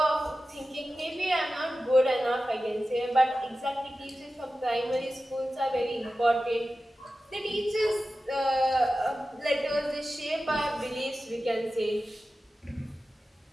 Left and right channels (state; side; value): normal; both; correlation 0.94